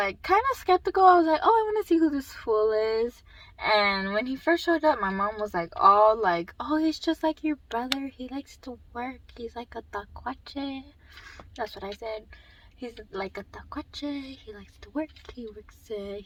kind of skeptical. I was like, oh, I want to see who this fool is. And when he first showed up, my mom was like, all like, oh, he's just like your brother. He likes to work. He's like a tacuache. That's what I said. He's like a tacuache. He likes to work.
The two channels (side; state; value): both; identical; correlation 1.00